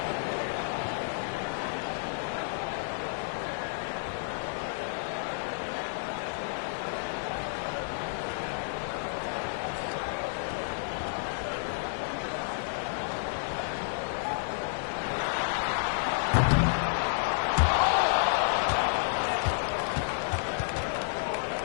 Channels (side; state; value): right; silent; digital silence